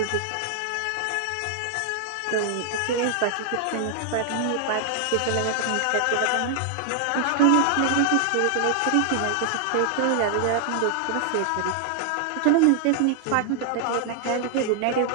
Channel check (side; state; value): both; different; correlation 0.00